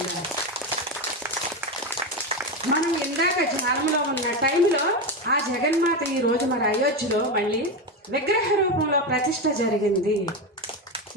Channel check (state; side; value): normal; both; correlation 0.15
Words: మనం ఇందాక ధ్యానంలో ఉన్న టైంలో ఆ జగన్మాత ఈ రోజు మరి అయోధ్యలో మళ్ళీ విగ్రహ రూపంలో ప్రతిష్ఠ జరిగింది.